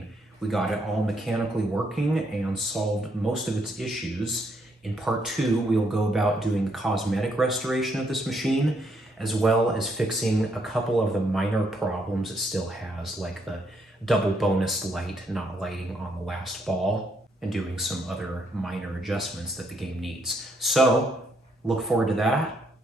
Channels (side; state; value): both; normal; correlation 0.73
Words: We got it all mechanically working and solved most of its issues. In part 2, we'll go about doing the cosmetic restoration of this machine, as well as fixing a couple of the minor problems it still has, like the double bonus light not lighting on the last ball, and doing some other minor adjustments that the game needs. So look forward to that,